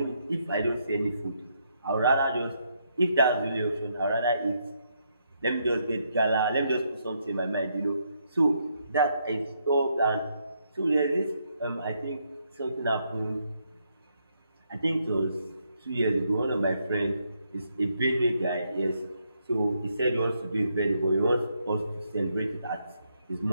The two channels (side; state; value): both; inverted; correlation -0.77